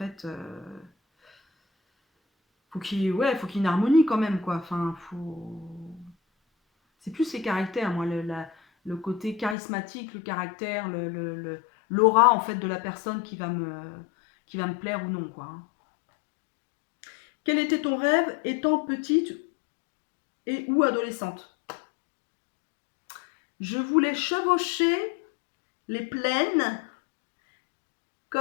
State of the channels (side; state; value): right; drops out; at 9.6 s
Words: Faut qu'il y ait une harmonie quand même, quoi. Enfin, c'est plus les caractères, moi, le côté charismatique, le caractère, l'aura en fait de la personne qui va me plaire ou non, quoi. Quel était ton rêve étant petite et ou adolescente? Je voulais chevaucher les plaines